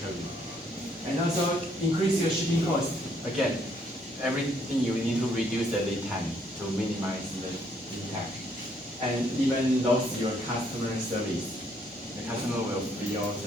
And also increase your shipping cost. Again, everything you need to reduce the lead time to minimize the impact. And even lose your customer service. The customer will feel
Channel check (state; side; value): normal; both; correlation 0.68